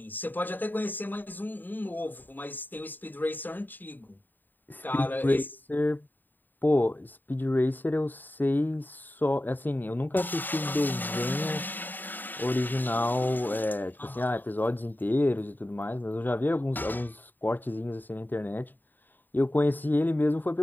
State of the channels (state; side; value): late; right; 0.090 ms